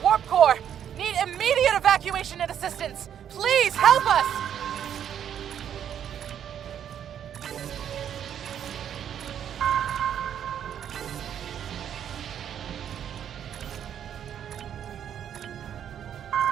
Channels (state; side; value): quieter; left; 9.3 dB